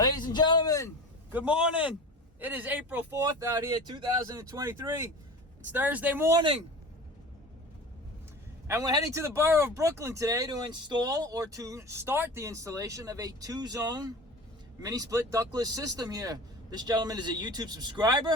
and gentlemen, good morning. It is April 4th out here, 2023. It's Thursday morning. And we're heading to the borough of Brooklyn today to install or to start the installation of a 2-zone mini split ductless system here. This gentleman is a YouTube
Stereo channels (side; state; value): both; normal; correlation 0.34